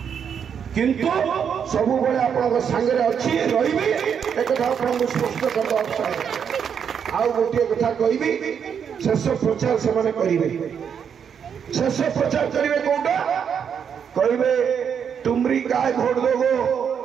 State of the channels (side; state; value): left; quieter; 7.5 dB